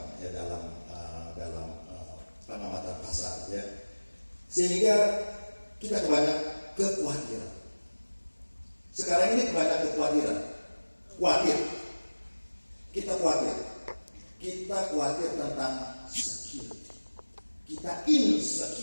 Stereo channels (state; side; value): inverted; both; correlation -1.00